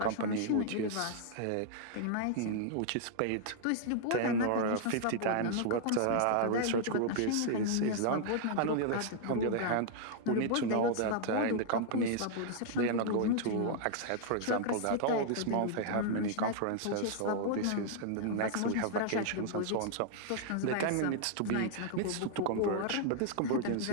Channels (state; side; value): different; both; correlation -0.01